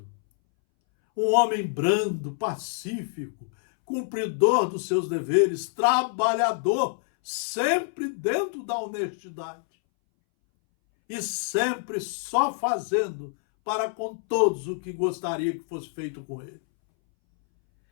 um homem brando, pacífico, cumpridor dos seus deveres, trabalhador, sempre dentro da honestidade e sempre só fazendo para com todos o que gostaria que fosse feito com ele.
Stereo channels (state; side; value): silent; right; 60 dB below the other